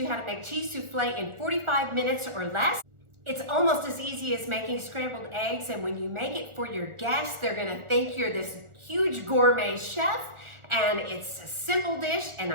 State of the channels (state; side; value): late; left; 1.4 ms